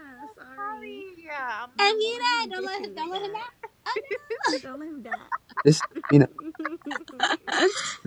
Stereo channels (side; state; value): both; identical; correlation 1.00